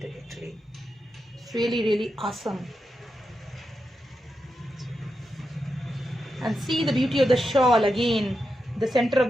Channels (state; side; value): normal; both; correlation 0.87